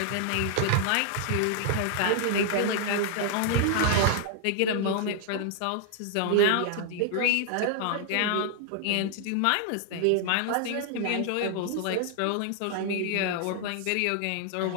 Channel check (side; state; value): both; different; correlation -0.01